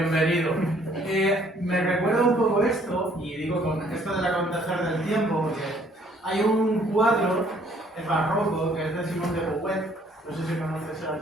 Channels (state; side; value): normal; both; correlation 0.62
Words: Me recuerda un poco esto, y digo con esto del acontecer del tiempo, porque hay un cuadro, el barroco, que es de Simón de Beauvoir, no sé si conoces al